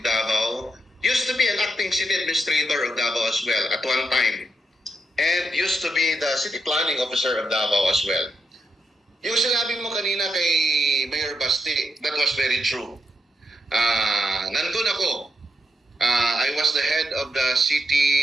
Davao, used to be an acting city administrator of Davao as well at one time, and used to be the city planning officer of Davao as well. Yung sinabi mo kanina kay Mayor Basti, that was very true. Nandun ako. I was the head of the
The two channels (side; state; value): both; normal; correlation 0.83